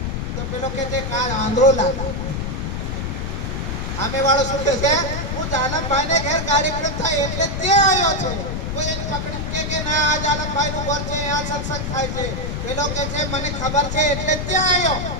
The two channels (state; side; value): noise; left; rumble, 3 dB below the sound